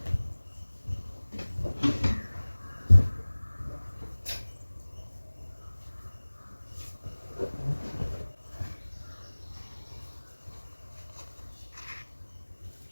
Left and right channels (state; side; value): inverted; both; correlation -1.00